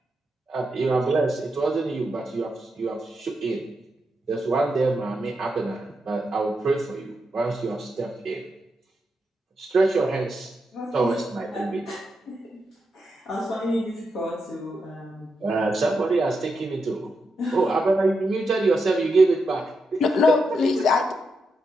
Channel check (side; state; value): both; normal; correlation 0.85